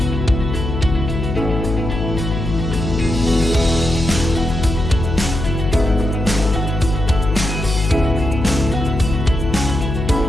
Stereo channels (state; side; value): noise; left; hum, 4 dB below the sound